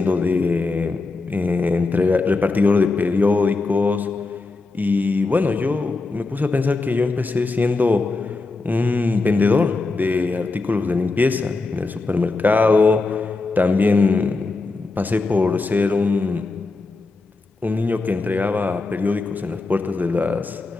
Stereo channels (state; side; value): quieter; right; 3.6 dB